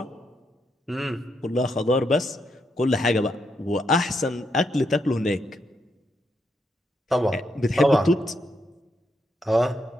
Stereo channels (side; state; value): both; normal; correlation 0.80